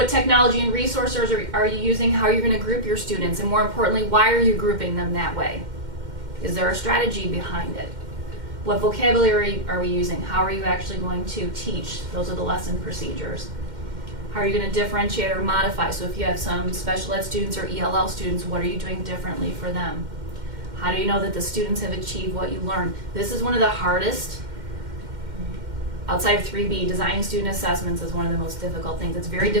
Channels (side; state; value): left; late; 2.1 ms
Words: technology and resources are you using? How are you going to group your students? And more importantly, why are you grouping them that way? Is there a strategy behind it? What vocabulary are we using? How are you actually going to teach? Those are the lesson procedures. How are you going to differentiate or modify? So if you have some special ed students or ELL students, what are you doing differently for them? How do you know that the students have achieved what you learned? This is one of the hardest, outside of 3B, designing student assessments is one of the most difficult things. It's very